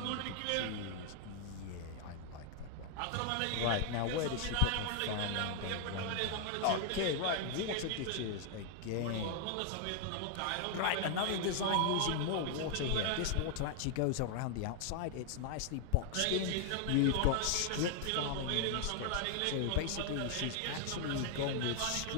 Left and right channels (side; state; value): both; different; correlation 0.00